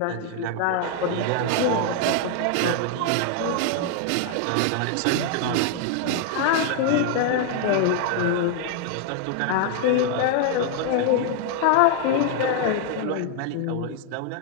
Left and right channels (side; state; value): both; different; correlation 0.00